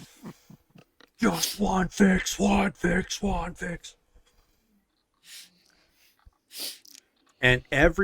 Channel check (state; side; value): identical; both; correlation 1.00